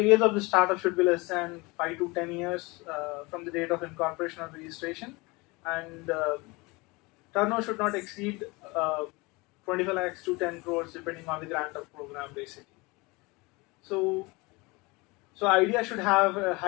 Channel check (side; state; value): right; quieter; 24.9 dB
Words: of the startup should be less than 5 to 10 years from the date of incorporation or registration, and turnover should not exceed 25 lakhs to 10 crores depending on the grant of program basically. So ideas should have a